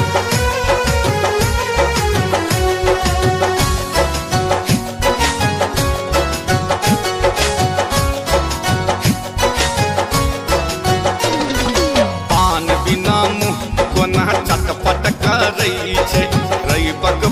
चटपट करई छे रईबक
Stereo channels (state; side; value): identical; both; correlation 1.00